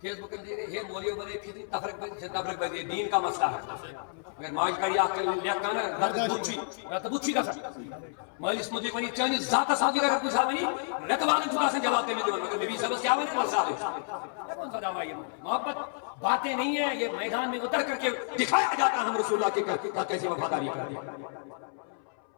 فیس بک دے رہے ہیں مولیوں بنے پھر تفرق بنے دین کا مسئلہ ہے اگر ماج کری آکھ کر لیا کانا رات بچی کا سکتا مالی اس مدی بنی چاہنے ذات صحابی کا کوئی صحابی نہیں رت والا چھوٹا سے جواب دینے دیوان مگر نبی صاحب کیا بنے مسئلہ ہے کون سا دعویٰ یہ محبت باتیں نہیں ہیں یہ میدان میں اتر کر کے دکھایا جاتا ہے ہم رسول اللہ کے کیسے وفاداری کر دیا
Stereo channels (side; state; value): right; silent; 58 dB below the other